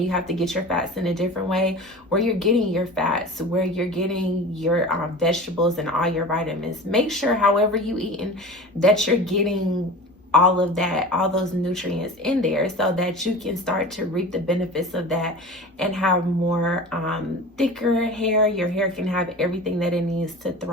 you have to get your fats in a different way, where you're getting your fats, where you're getting your vegetables and all your vitamins. Make sure, however you eating, that you're getting all of that, all those nutrients in there so that you can start to reap the benefits of that and have more thicker hair. Your hair can have everything that it needs to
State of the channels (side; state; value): both; normal; correlation 0.35